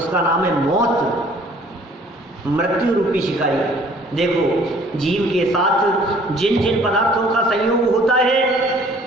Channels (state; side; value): normal; both; correlation 0.55